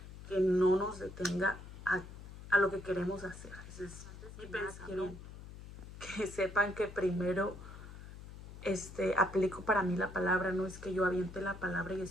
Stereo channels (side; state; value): left; noise; hum, 14 dB below the sound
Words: que no nos detenga a lo que queremos hacer. Ese es mi pensamiento. Que sepan que primero aplico para mí la palabra, no es que yo aviente la palabra